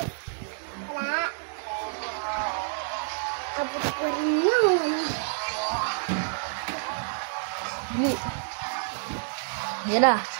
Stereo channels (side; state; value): left; silent; digital silence